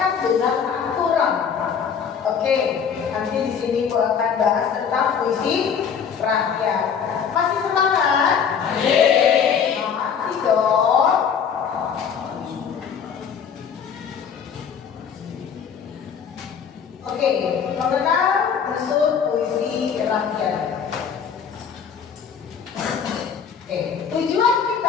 Oke, nanti di sini gue akan bahas tentang puisi rakyat. Masih semangat? Masih dong. Oke, mengenal unsur puisi rakyat. Oke, tujuan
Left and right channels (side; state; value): right; quieter; 7.1 dB